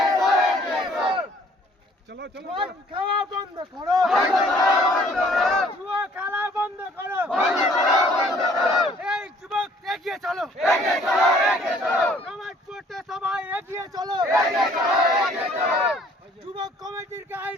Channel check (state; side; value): normal; both; correlation 0.58